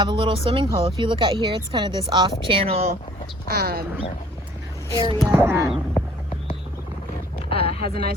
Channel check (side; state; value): both; normal; correlation 0.55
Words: a little swimming hole. If you look out here, it's kind of this off-channel area that has a